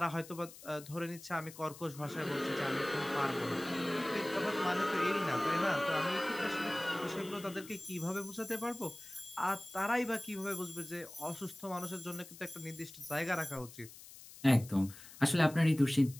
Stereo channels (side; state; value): left; noise; hiss, 17 dB below the sound